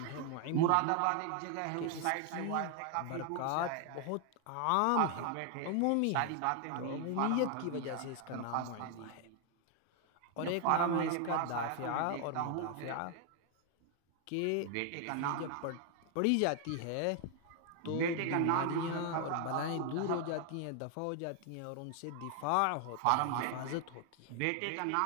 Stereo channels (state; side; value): different; both; correlation 0.00